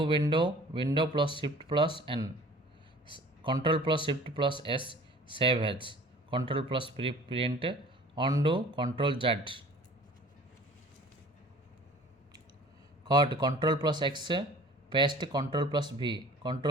window plus shift plus N control plus shift plus S save as control plus print undo control Z cut control plus X paste control plus V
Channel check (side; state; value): both; normal; correlation 0.47